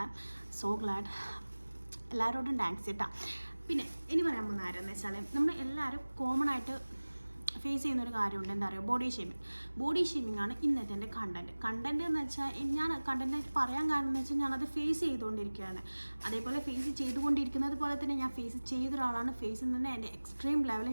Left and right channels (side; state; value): both; inverted; correlation -1.00